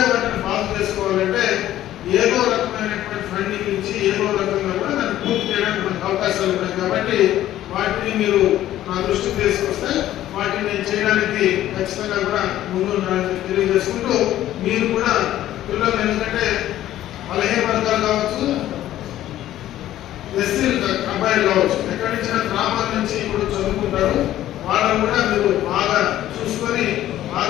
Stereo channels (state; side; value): quieter; right; 13.2 dB